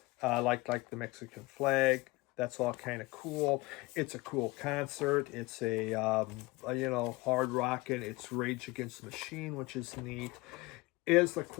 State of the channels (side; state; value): right; quieter; 22.5 dB